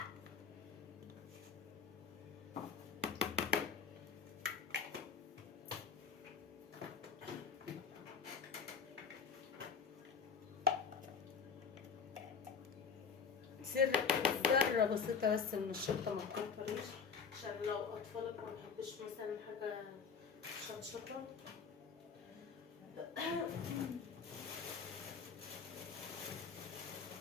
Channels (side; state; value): right; quieter; 6.0 dB